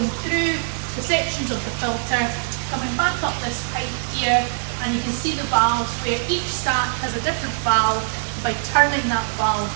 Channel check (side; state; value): left; silent; digital silence